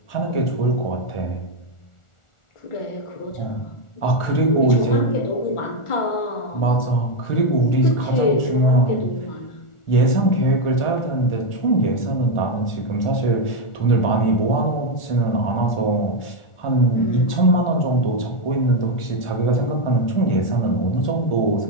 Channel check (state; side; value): late; right; 1.4 ms